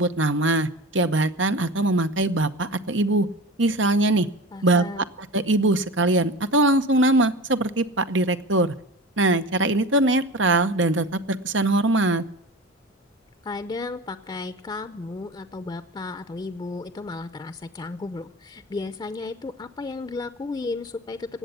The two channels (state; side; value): normal; both; correlation 0.32